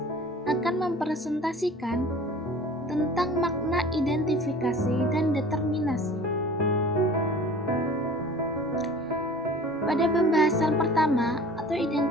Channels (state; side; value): normal; both; correlation 0.42